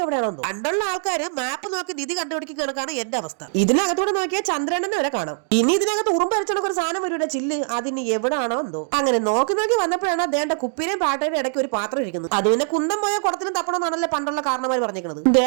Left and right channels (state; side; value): silent; left; digital silence